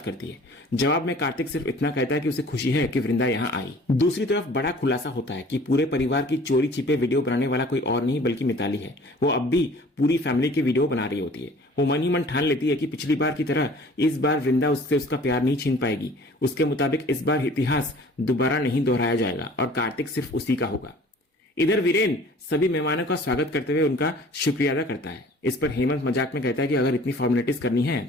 करती है। जवाब में कार्तिक सिर्फ इतना कहता है कि उसे खुशी है कि वृंदा यहाँ आई। दूसरी तरफ बड़ा खुलासा होता है कि पूरे परिवार की चोरी छिपे वीडियो बनाने वाला कोई और नहीं बल्कि मिताली है। वो अब भी पूरी फैमिली की वीडियो बना रही होती है। वो मन ही मन ठान लेती है कि पिछली बार की तरह इस बार वृंदा उससे उसका प्यार नहीं छीन पाएगी। उसके मुताबिक इस बार इतिहास दोबारा नहीं दोहराया जाएगा और कार्तिक सिर्फ उसी का होगा। इधर वीरेन सभी मेहमानों का स्वागत करते हुए उनका शुक्रिया अदा करता है। इस पर हेमंत मजाक में कहता है कि अगर इतनी फॉर्मेलिटीज करनी है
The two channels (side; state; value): both; normal; correlation 0.49